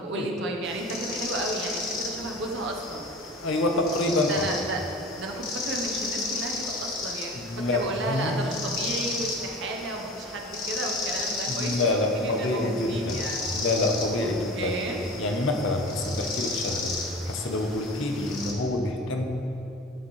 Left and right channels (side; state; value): both; normal; correlation 0.37